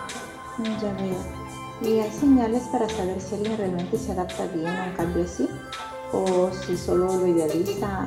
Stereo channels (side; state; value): both; identical; correlation 1.00